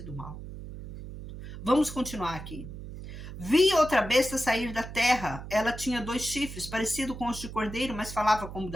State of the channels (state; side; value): noise; right; hum, 11 dB below the sound